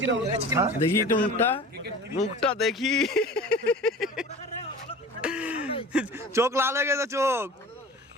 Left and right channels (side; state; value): both; normal; correlation 0.39